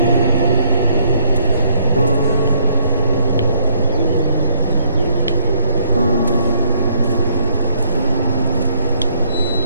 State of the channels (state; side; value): inverted; both; correlation -0.34